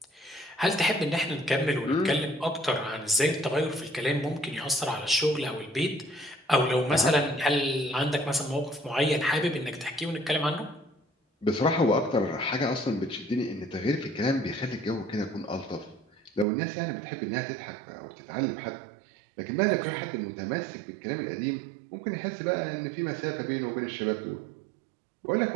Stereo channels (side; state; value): left; drops out; at 16.4 s